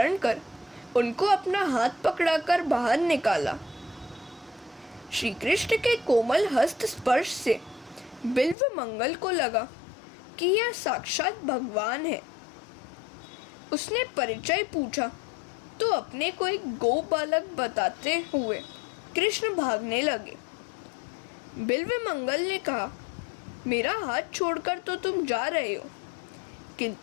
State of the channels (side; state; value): right; drops out; at 8.6 s